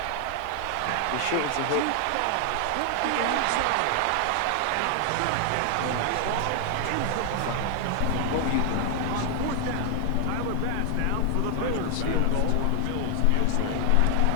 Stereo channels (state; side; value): different; both; correlation 0.00